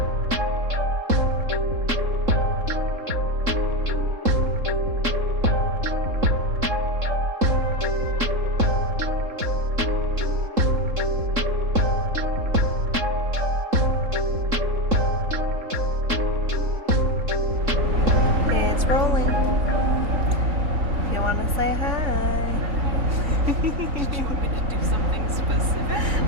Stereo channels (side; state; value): left; late; 3.8 ms